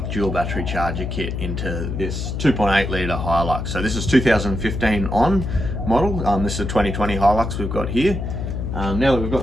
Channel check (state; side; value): noise; left; hum, 4 dB below the sound